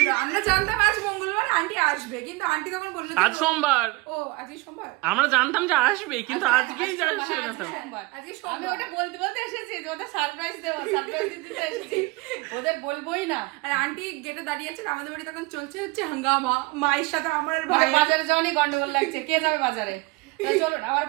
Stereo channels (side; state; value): left; quieter; 23.9 dB